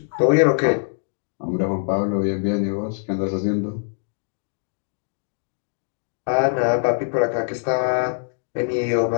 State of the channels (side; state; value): right; silent; digital silence